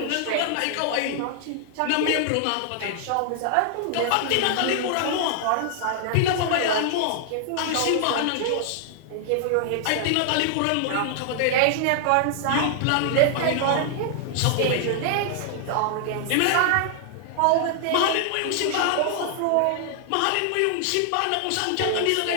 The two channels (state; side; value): different; both; correlation 0.00